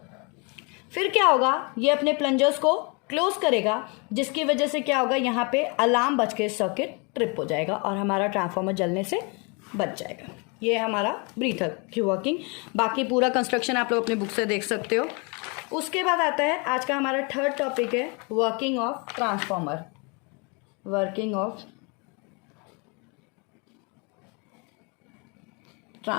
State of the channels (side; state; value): right; quieter; 32.0 dB